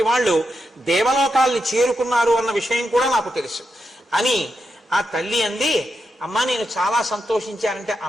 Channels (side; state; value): both; normal; correlation 0.86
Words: వాళ్ళు దేవలోకాల్ని చేరుకున్నారు అన్న విషయం కూడా నాకు తెలుసు అని ఆ తల్లి అంది. అమ్మా, నేను చాలా సంతోషించానంటే